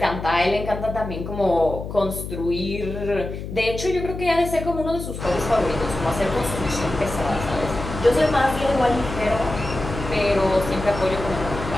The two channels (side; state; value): left; noise; hum, 8 dB below the sound